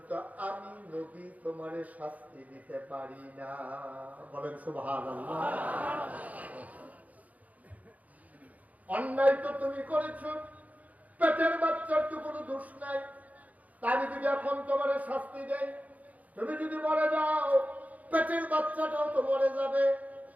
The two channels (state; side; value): late; left; 0.074 ms